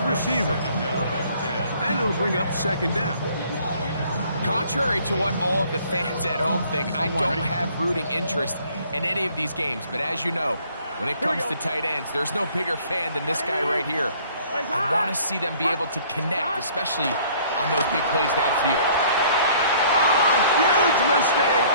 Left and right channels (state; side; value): inverted; both; correlation -0.57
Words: receiver. And it'll bring up 2nd down. Contrary to what all of the fans at home think, I don't have rooting interest in any of these games. But as you know, when it comes to tight ends, there's no bigger fan than this guy right here. I want to see them be able to connect, especially on those big plays downfield. Oh, huge mistake